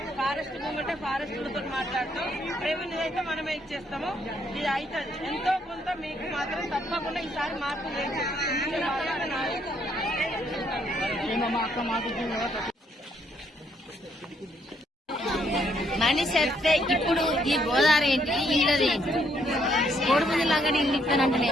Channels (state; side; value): normal; both; correlation 0.71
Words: ఫారెస్ట్ మూమెంటే ఫారెస్ట్లతో మాట్లాడతాం. రెవెన్యూ అయితే మనమే ఇచ్చేస్తాము. ఇది అవుతుంది. ఎంతో కొంత మీకు మాత్రం తప్పకుండా ఈసారి మార్పు మనిషి వస్తే ఇప్పుడు ఈ గోదావరి ఏంటి, ఇళ్ళది ఏంటి, కోడిపుంజులాగా ఇల్లు ఇస్తానంటే